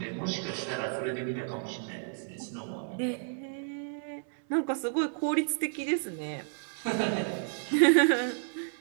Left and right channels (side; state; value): left; silent; 56 dB below the other